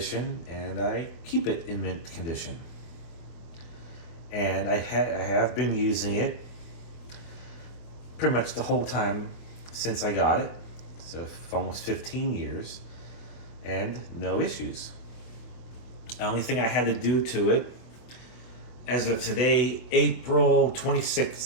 and I keep it in mint condition. And I have been using it pretty much the whole time since I got it, so for almost 15 years, and no issues. The only thing I had to do to it, as of today, April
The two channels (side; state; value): right; late; 25 ms